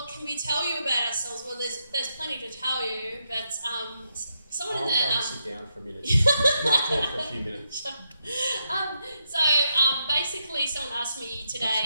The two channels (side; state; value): both; inverted; correlation -0.81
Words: can we tell you about ourselves? Well, there's plenty to tell you, but someone in I'll the sit down for a minute. Might talk for a few minutes. Basically, someone asked me